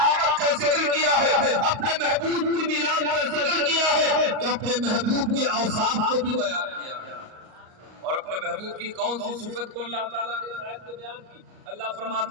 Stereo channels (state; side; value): late; left; 38 ms